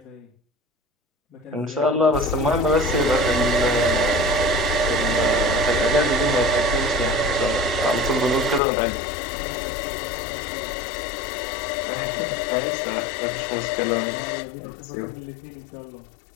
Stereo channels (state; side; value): drops out; right; at 8.6 s